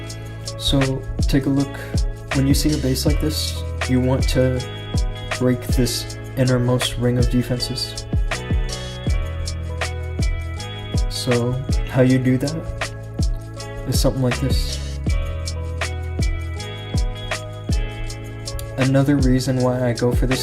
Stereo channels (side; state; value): both; identical; correlation 1.00